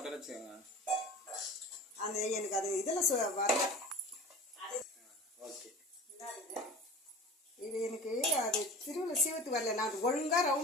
வச்சுக்கோங்க. அந்த எனக்கு அது இதெல்லாம் வரல. ஓகே, இது எனக்கு அது திருவிழா சீவத்து வரல. நான் ஒழுங்கா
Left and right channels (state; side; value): normal; both; correlation 0.37